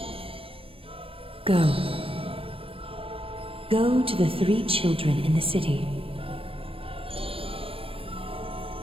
Go. Go to the 3 children in the city.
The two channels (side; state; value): left; late; 0.27 ms